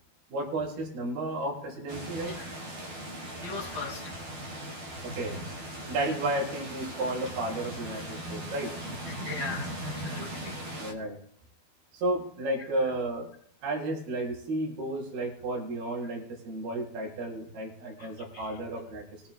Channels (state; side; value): late; left; 12 ms